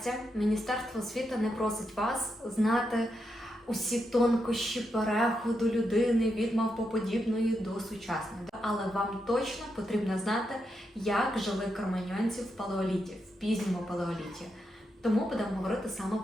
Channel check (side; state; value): both; normal; correlation 0.84